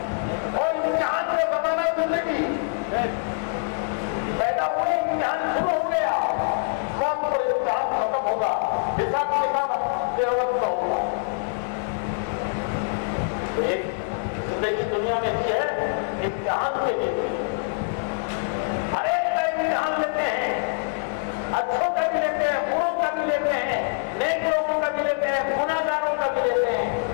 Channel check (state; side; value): silent; right; 62 dB below the other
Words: اور امتحان سے بنانا زندگی. پیدا ہوئے امتحان شروع ہو گیا, موت پر امتحان ختم ہوگا, حساب کتاب قیامت کا ہوگا. تو ایک زندگی دنیا میں دی ہے امتحان کے لیے. ہر ایک کا امتحان لیتے ہیں, اچھوں کا بھی لیتے ہیں, بروں کا بھی لیتے ہیں, نیک لوگوں کا بھی لیتے ہیں, گناہگاروں کا بھی لیتے ہیں,